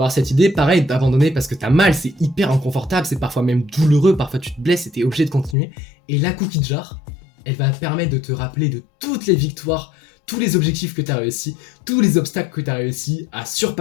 cette idée, pareil, d'abandonner parce que t'as mal, c'est hyper inconfortable, c'est parfois même douloureux, parfois tu te blesses et t'es obligé de continuer. Et la cookie jar, elle va te permettre de te rappeler de toutes les victoires, tous les objectifs que t'as réussi, tous les obstacles que t'as réussi à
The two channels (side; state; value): right; drops out; at 5.6 s